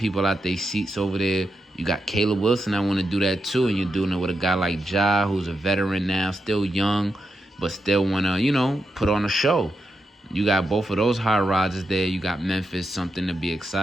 out their seats over there. You got Caleb Wilson that want to do that too, and you're doing it with a guy like Ja, who's a veteran now, still young, but still want to, put on a show. You got both of those high rises there. You got Memphis, something to be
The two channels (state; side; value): normal; both; correlation 0.86